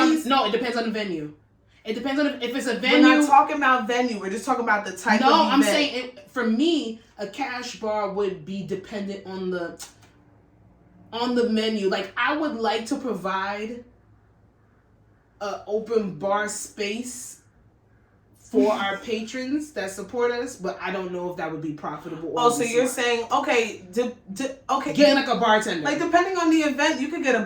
It depends on the venue. It depends on if it's a venue. We're not talking about venue. We're just talking about the type of event. No, I'm saying for me, a cash bar would be dependent on the menu. Like I would like to provide an open bar space for our patrons that support us, but I don't know if that would be profitable. Oh, so you're saying okay, okay, getting like a bartender. Like depending on the event, you could get a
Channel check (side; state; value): both; identical; correlation 1.00